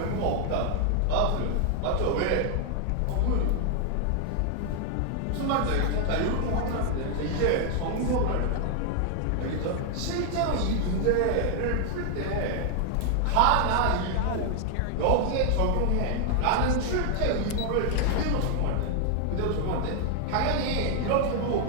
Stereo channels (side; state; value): both; different; correlation 0.00